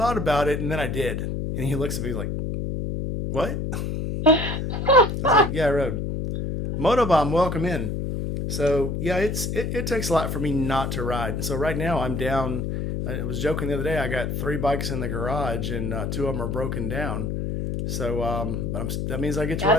about it and then I did." And he looks at me like, "What?" I was like, "Yeah, I rode." Motobomb, welcome in. So yeah, it takes a lot for me not to ride. So right now I'm down. I was joking the other day. I got three bikes in the garage and two of them are broken down. So but that means I get to ride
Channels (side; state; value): left; noise; hum, 2 dB below the sound